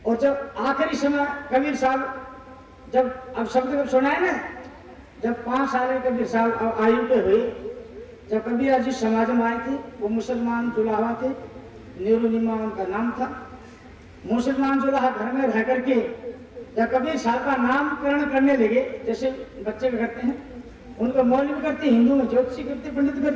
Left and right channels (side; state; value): both; identical; correlation 1.00